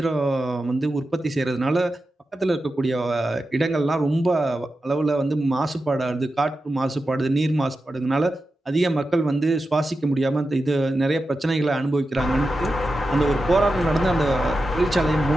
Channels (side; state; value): both; normal; correlation 0.91